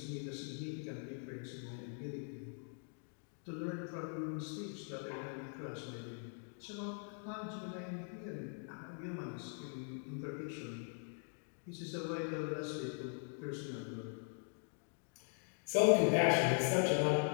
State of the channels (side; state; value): right; silent; 50 dB below the other